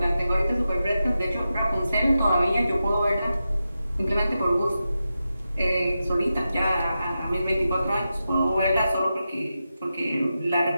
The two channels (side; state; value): both; inverted; correlation -0.90